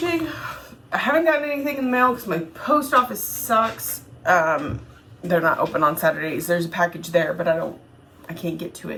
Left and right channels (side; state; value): both; identical; correlation 1.00